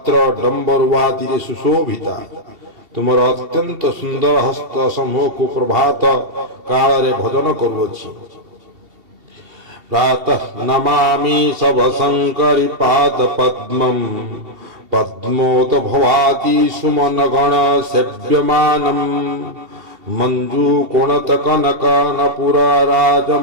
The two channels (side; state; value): left; late; 2.7 ms